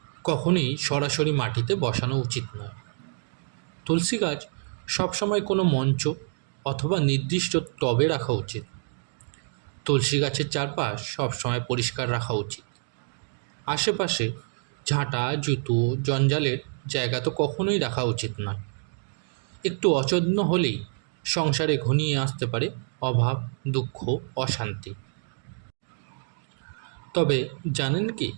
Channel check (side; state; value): left; silent; 60 dB below the other